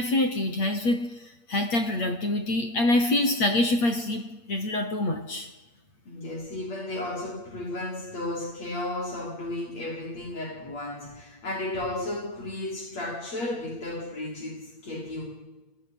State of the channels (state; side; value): late; right; 8.5 ms